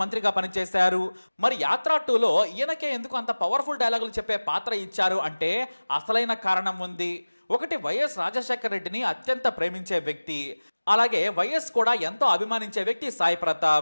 మంత్రిగా పనిచేశారు. మరి యాత్ర 2లో ఈయనకే ఎందుకు అంత పవర్ఫుల్ డైలాగులు చెప్పే పాత్ర ఇచ్చారు అంటే అసలైన కారణం ఉంది. ఒకటి, వైఎస్ రాజశేఖర్ రెడ్డిని అత్యంత ప్రేమించే వ్యక్తి. అలాగే వైఎస్ కూడా ఎంతో అభిమానించే వ్యక్తి సాయి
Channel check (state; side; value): inverted; both; correlation -1.00